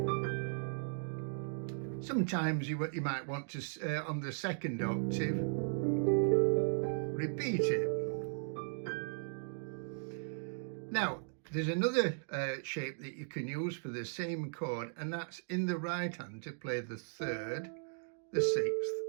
Sometimes you might want to, on the second octave, repeat it. Now, there's another shape that you can use for the same chord, and that's in the right hand to play the 3rd, the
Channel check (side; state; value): left; silent; digital silence